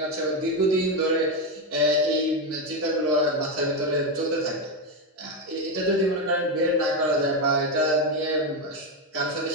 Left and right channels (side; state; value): both; normal; correlation 0.09